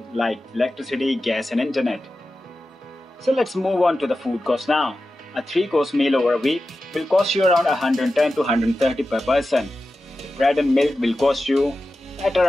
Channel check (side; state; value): both; normal; correlation 0.93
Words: like electricity, gas and internet. So let's move on to the food cost now. A 3-course meal over a week will cost you around $110 to $130 per person. The bread and milk will cost you at